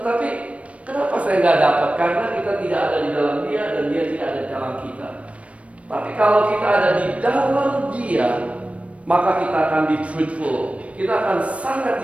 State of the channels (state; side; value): late; left; 0.064 ms